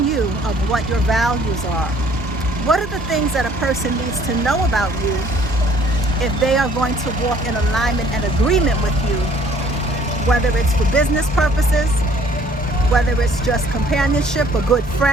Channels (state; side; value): normal; both; correlation 0.58